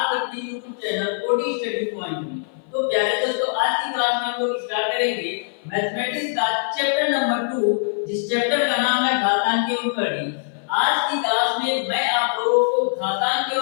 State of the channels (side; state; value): right; silent; 58 dB below the other